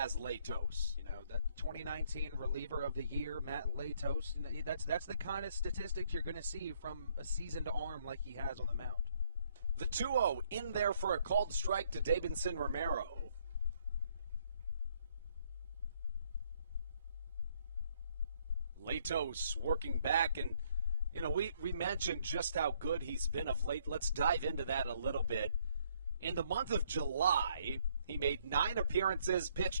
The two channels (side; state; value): both; inverted; correlation -0.68